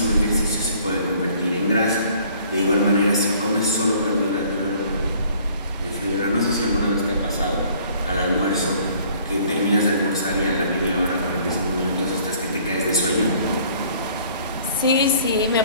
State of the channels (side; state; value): both; inverted; correlation -0.56